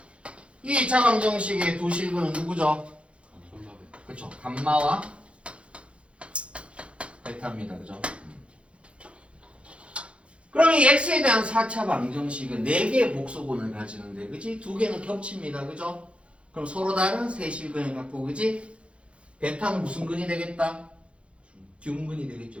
이 2차 방정식의 두 식은 누구죠? 그쵸? 감마와 베타입니다, 그죠? 그럼 이 x에 대한 4차 방정식은 4개의 복소근을 가지는데, 그지? 2개는 겹칩니다, 그죠? 그럼 서로 다른 세 실근을 갖고, 그지? 베타는 무슨 근이 되겠다? 듀근이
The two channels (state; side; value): late; left; 0.060 ms